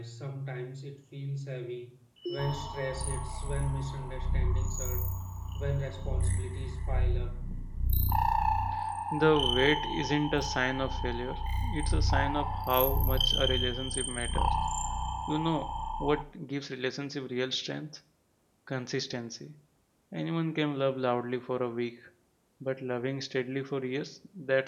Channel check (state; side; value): identical; both; correlation 1.00